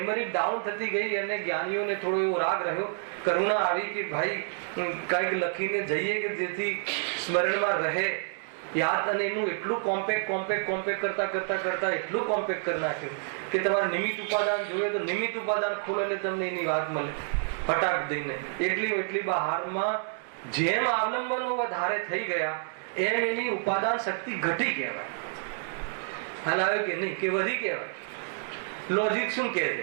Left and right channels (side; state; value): left; silent; digital silence